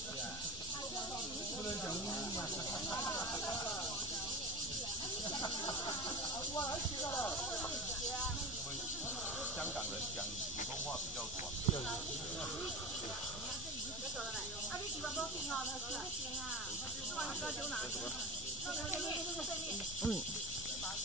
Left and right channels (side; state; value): both; normal; correlation 0.24